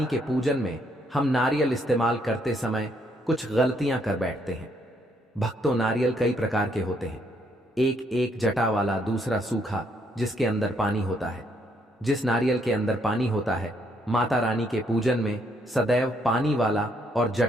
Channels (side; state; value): both; normal; correlation 0.71